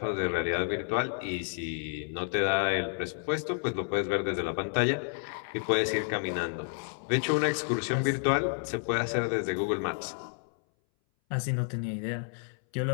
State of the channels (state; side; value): silent; right; 58 dB below the other